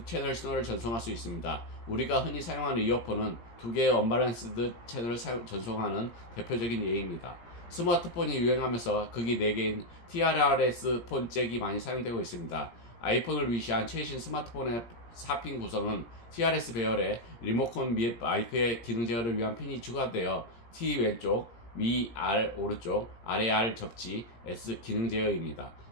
채널 신호를 전송할 수 있습니다. 우리가 흔히 사용하는 이어폰은 두 개의 언밸런스드 채널을 전송하는 대표적인 예입니다. 스마트폰이 유행하면서 극이 4개인 TRRS 폰 잭이 많이 사용되고 있습니다. 아이폰을 위시한 최신 스마트폰의 4핀 구성은 TRS 배열에 리모컨 및 마이크의 기능 제어를 위한 핀이 추가되어 T 왼쪽, 위 R 오른쪽, 아래 R 접지, S 기능 제어입니다.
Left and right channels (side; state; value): right; late; 17 ms